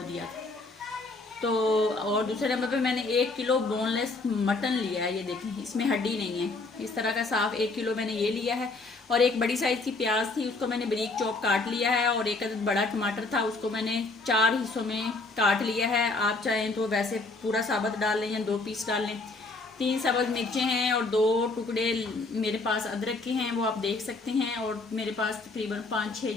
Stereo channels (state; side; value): quieter; right; 3.4 dB